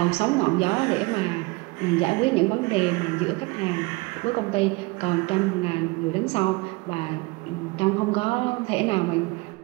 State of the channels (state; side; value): quieter; left; 25.0 dB